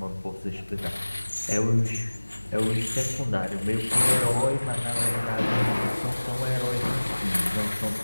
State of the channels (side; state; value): both; inverted; correlation -1.00